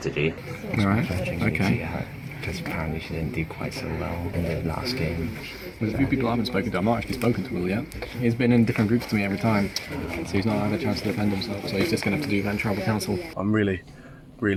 Alright, okay. Because apparently she didn't do quite so well in the last game. There's a few people I haven't spoken to. I've not actually spoken to Will yet. He's been in different groups to me every time, so he's not had a chance to defend himself, so he's just going to have to do then tribal council. I'm really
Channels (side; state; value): both; identical; correlation 1.00